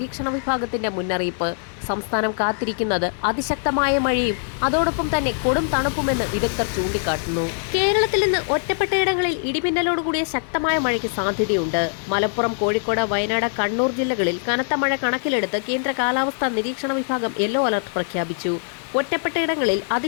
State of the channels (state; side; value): silent; right; digital silence